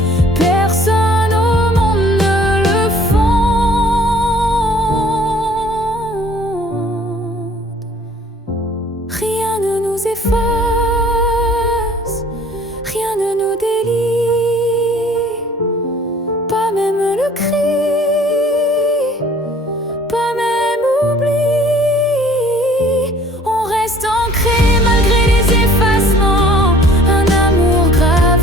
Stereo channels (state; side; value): normal; both; correlation 0.54